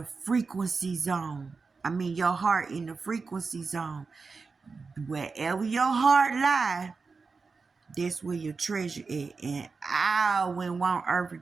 frequency zone? Your heart in the frequency zone. Wherever your heart lies, that's where your treasure is. And I wouldn't want earthly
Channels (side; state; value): left; quieter; 4.5 dB